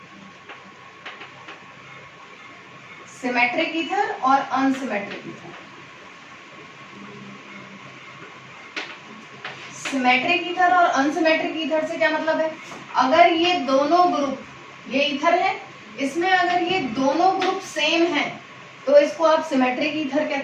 ईथर और अनसिमेट्रिक ईथर। सिमेट्रिक ईथर और अनसिमेट्रिक ईथर से क्या मतलब है? अगर ये दोनों ग्रुप, ये ईथर है, इसमें अगर ये दोनों ग्रुप सेम हैं तो इसको आप सिमेट्रिक ईथर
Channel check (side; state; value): both; identical; correlation 1.00